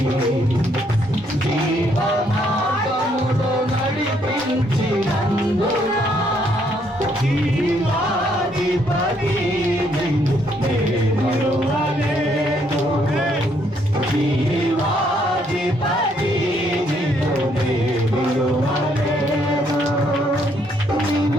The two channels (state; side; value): normal; both; correlation 0.70